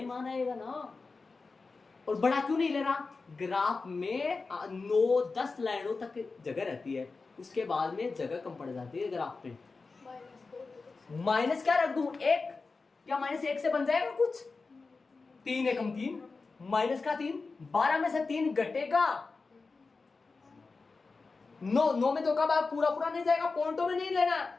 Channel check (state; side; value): quieter; right; 4.1 dB